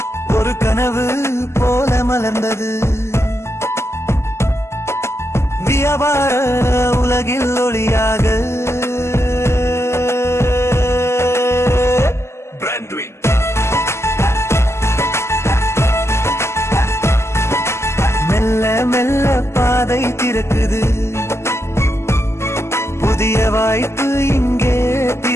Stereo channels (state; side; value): late; right; 0.13 ms